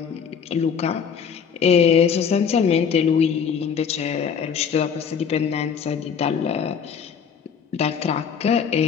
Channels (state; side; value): quieter; right; 7.0 dB